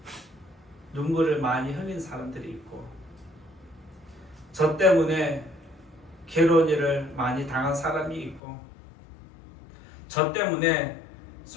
눈물을 많이 흘린 사람들이 있고, 저 때문에 괴로운 일을 많이 당한 사람이 있고, 저 때문에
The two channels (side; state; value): right; drops out; at 8.4 s